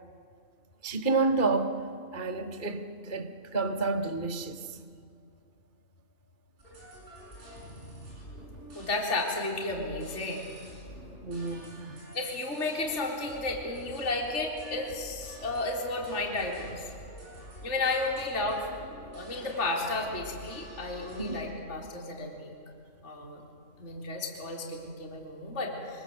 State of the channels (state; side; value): late; right; 3.4 ms